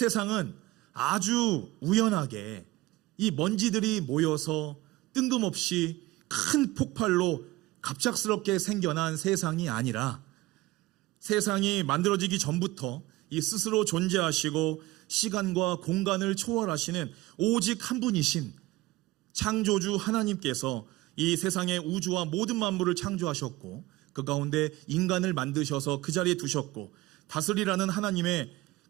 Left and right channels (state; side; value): quieter; left; 18.9 dB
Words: 아주 우연하게 이 먼지들이 모여서 뜬금없이 큰 폭발로 갑작스럽게 생겨난 세상이 아니라 세상이 만들어지기 전부터 이 스스로 존재하시고 시간과 공간을 초월하시는 오직 한 분이신 창조주 하나님께서 이 세상의 우주와 모든 만물을 창조하셨고 그 가운데 인간을 만드셔서 그 자리에 두셨고 다스리라는 하나님의